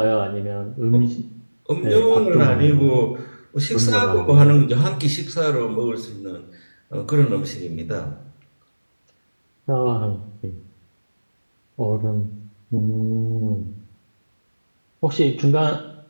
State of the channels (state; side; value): inverted; both; correlation -1.00